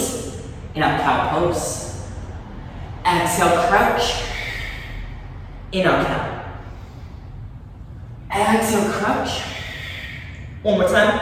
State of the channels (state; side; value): identical; both; correlation 1.00